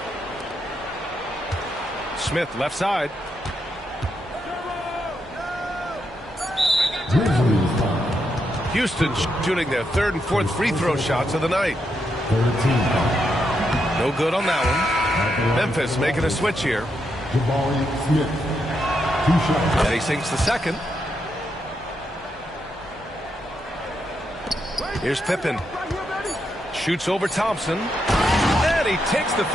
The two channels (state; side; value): normal; both; correlation 0.82